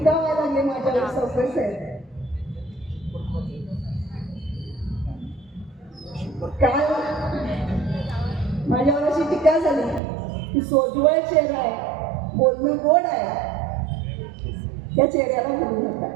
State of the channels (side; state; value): left; drops out; at 10.0 s